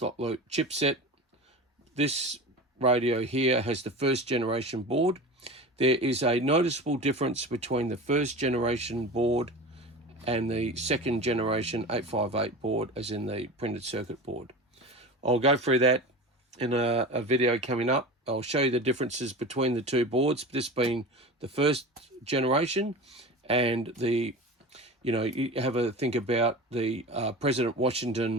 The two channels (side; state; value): both; normal; correlation 0.31